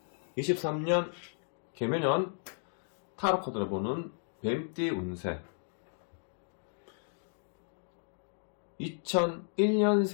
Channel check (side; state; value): right; silent; digital silence